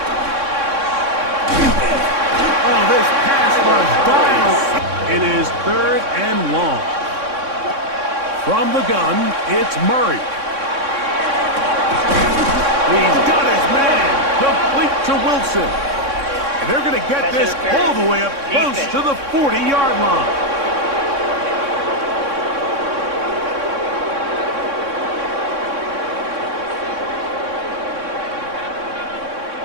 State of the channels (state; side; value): late; left; 3.6 ms